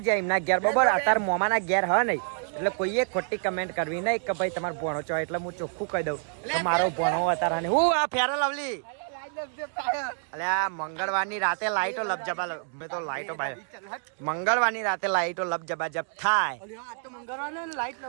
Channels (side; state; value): left; silent; 60 dB below the other